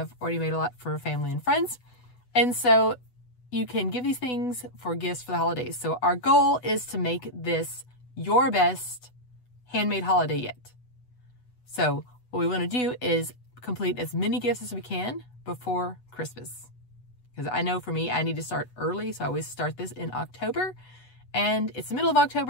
already made a lot for family and friends. And so you can give these things for gifts for the holidays. So our goal is to make this your best handmade holiday yet. So what we want to do is complete as many gifts as we can before Christmas. Because I know for me, I need to start early. So I always start this in October. And it's the middle of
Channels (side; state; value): right; late; 8.1 ms